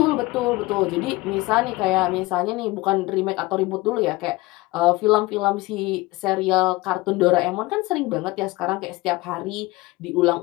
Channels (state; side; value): quieter; right; 21.4 dB